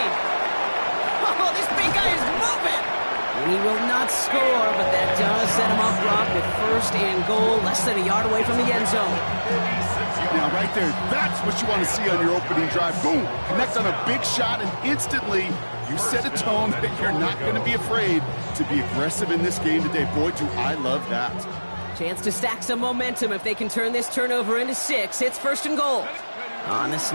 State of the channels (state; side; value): inverted; both; correlation -1.00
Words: Oh, this big guy is moving. And he will not score, but that does set him up, Brock, with 1st and goal, less than a yard away from the end zone. Now, right there, that's what you want to see on your opening drive. Boom! Connect on a big shot, and instantly you set a tone that you're not going to be afraid to be aggressive in this game today. Boy, do I love that. Chance to stack some momentum if they can turn this turnover into 6. It's 1st and goal. On the